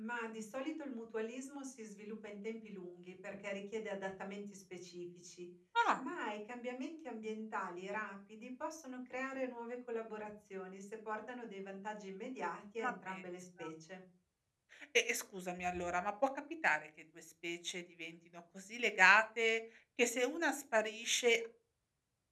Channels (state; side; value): identical; both; correlation 1.00